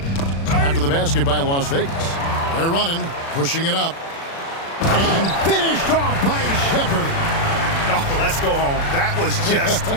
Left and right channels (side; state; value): right; late; 36 ms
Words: After the basket by Las Vegas. They're running, pushing it up. And finished off by Shepherd. Oh, let's go home. That was just